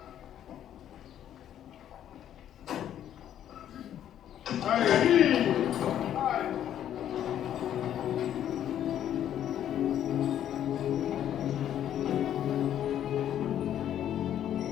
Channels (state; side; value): quieter; right; 10.7 dB